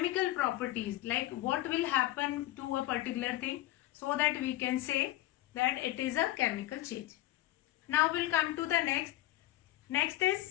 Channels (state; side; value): quieter; right; 15.9 dB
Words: properties, like what will happen to a particular thing, so that we can say that it is a chemical change. Now we'll come to the next. Next